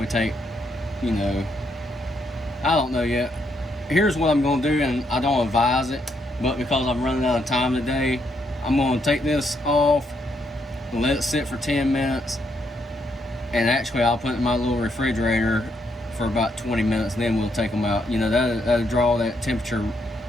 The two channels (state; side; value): normal; both; correlation 0.76